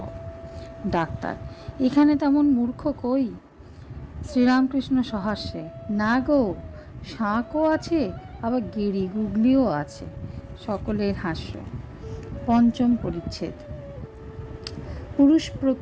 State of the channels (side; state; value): both; identical; correlation 1.00